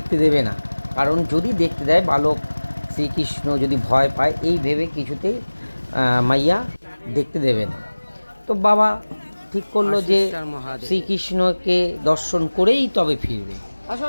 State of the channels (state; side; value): inverted; both; correlation -1.00